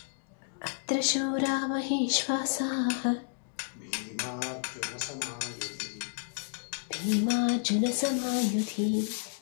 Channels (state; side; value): silent; right; digital silence